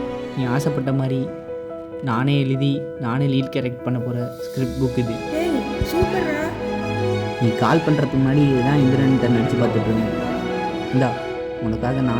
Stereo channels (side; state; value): both; identical; correlation 1.00